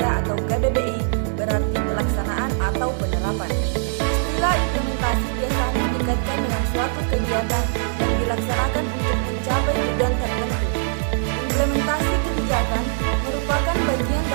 atau KBBI berarti pelaksanaan atau penerapan. Istilah implementasi biasanya dikaitkan dengan suatu kegiatan yang dilaksanakan untuk mencapai tujuan tertentu. Implementasi kebijakan merupakan bagian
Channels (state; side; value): silent; left; digital silence